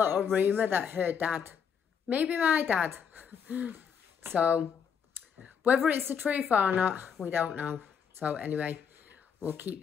rumour that her dad, maybe my dad. So, whether it's the truth or not, we don't know. So anyway, we'll keep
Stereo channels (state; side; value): quieter; right; 7.2 dB